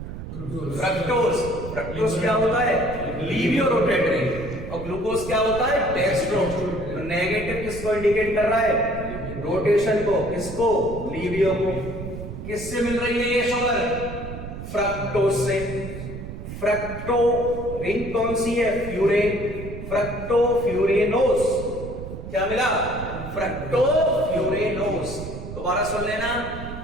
फ्रक्टोज। फ्रक्टोज क्या होता है? लीवियो रोटेटरी। और ग्लूकोज क्या होता है? डेक्स्ट्रो। तो नेगेटिव किसको इंडिकेट कर रहा है? रोटेशन को। किसको? लीवियो को। किससे मिल रही है ये शुगर? फ्रक्टोज से। फ्रक्टो रिंग कौन सी है? फ्यूरेन। फ्रक्टोफ्यूरेनोस। क्या मिला? फ्रक्टोफ्यूरेनोस। दोबारा सुन लेना,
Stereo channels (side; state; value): right; noise; rumble, 9 dB below the sound